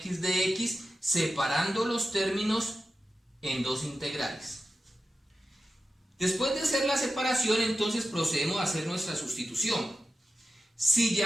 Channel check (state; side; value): normal; both; correlation 0.92